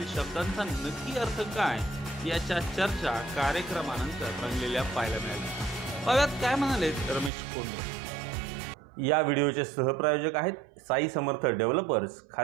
शब्दांचा नक्की अर्थ काय याच्या चर्चा कार्यक्रमानंतर रंगलेल्या पाहायला मिळाल्या। पाहूयात काय म्हणाले रमेश कोंडे। या व्हिडिओचे सहप्रायोजक आहेत साई समर्थ डेव्हलपर्स,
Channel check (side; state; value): left; drops out; at 7.3 s